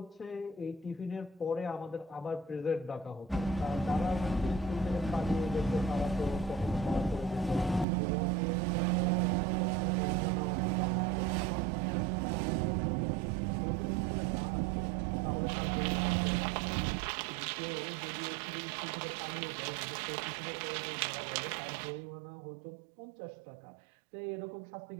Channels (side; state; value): left; drops out; at 7.9 s